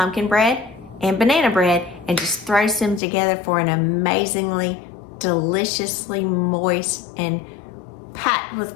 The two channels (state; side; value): drops out; right; at 3.0 s